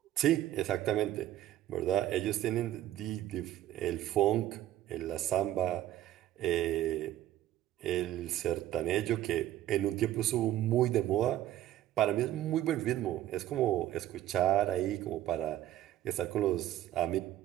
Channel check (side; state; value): left; quieter; 13.2 dB